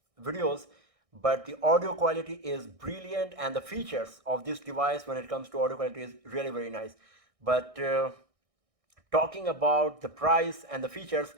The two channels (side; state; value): left; late; 1.6 ms